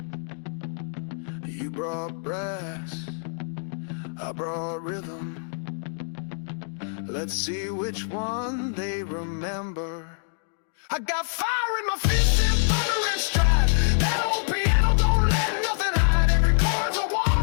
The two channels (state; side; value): silent; right; digital silence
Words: You brought brass, I brought rhythm. Let's see which one they remember. I got fire in my fists and thunder and stride. That old piano don't let nothing hide. Every chord's a